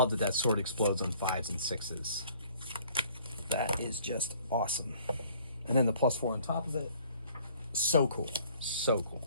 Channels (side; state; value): both; inverted; correlation -0.57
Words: that that sword explodes on 5s and 6s. That is just awesome. And then the +4 on top of it. So cool. So cool.